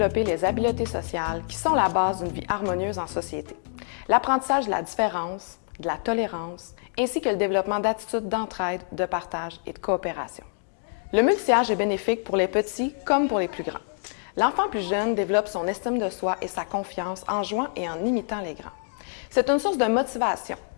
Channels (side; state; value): right; silent; digital silence